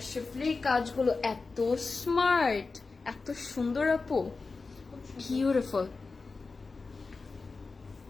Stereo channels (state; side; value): quieter; right; 4.1 dB